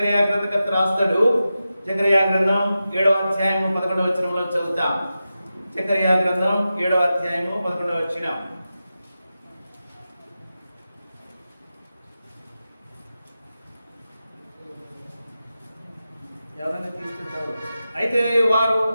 గ్రంథకర్త రాస్తాడు. జకర్యా గ్రంథం 7వ అధ్యాయము 11వ వచనంలో చదువుతాం. జకర్యా గ్రంథం 7వ అధ్యాయము 11వ వచనం. అయితే వారు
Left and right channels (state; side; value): inverted; both; correlation -0.92